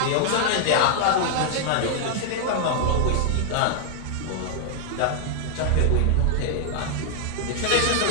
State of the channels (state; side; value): different; both; correlation -0.01